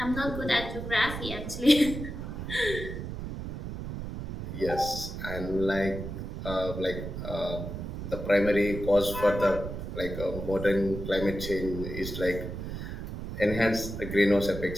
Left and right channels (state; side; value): noise; right; rumble, 7 dB below the sound